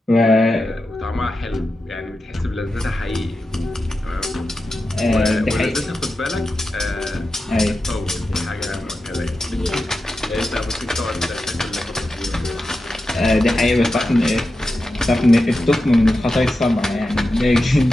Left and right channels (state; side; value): normal; both; correlation 0.91